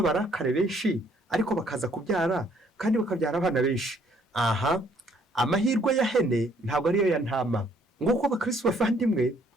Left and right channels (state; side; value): normal; both; correlation 0.64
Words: benshi, ariko bakaza kubyara kandi bakabyara abana benshi? Aha, amahirwe ya hene ntabwo ariyo ya ntama. Nguko abakristo bavandimwe,